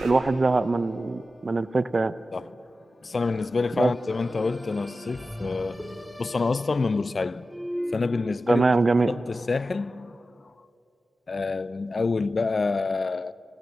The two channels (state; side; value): normal; both; correlation 0.93